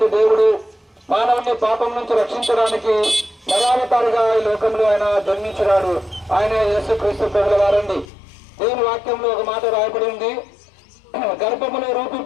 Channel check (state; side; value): drops out; right; at 8.1 s